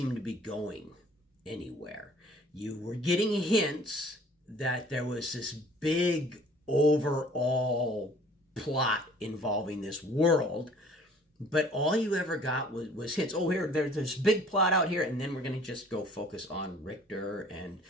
to be going anywhere. You were getting hints that there was this big overall plot involving this world, but all you ever got was hints. Oh, there's this big plot out here, and then we're going to just go focus on Richter and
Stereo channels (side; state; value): both; normal; correlation 0.53